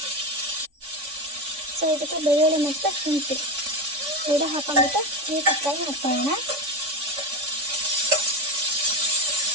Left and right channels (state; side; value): late; left; 3.5 ms